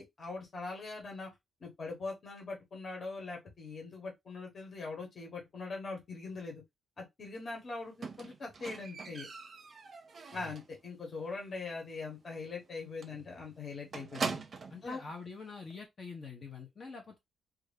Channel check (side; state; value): both; normal; correlation 0.80